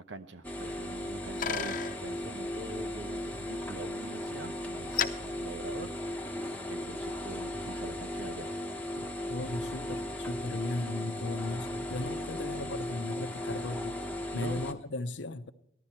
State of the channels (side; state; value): both; normal; correlation 0.63